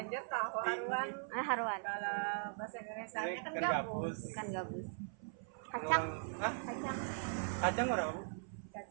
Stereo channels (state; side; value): silent; left; 51 dB below the other